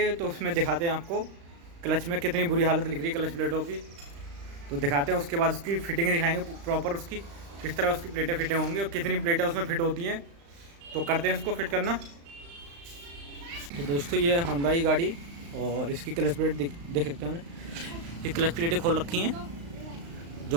तो उसमें दिखाते हैं आपको क्लच में कितनी बुरी हालत लिख रही है क्लच प्लेटों की, तो दिखाते हैं। उसके बाद उसकी फिटिंग दिखाएंगे प्रॉपर, उसकी किस तरह उसकी प्लेटें फिटें होंगी और कितनी प्लेटें उसमें फिट होती हैं। तो करते हैं उसको फिट करना। तो दोस्तों, ये है होंडा की गाड़ी और इसकी क्लच प्लेट देख सकते हैं। ये क्लच प्लेटें खोल रखी हैं,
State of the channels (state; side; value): late; left; 35 ms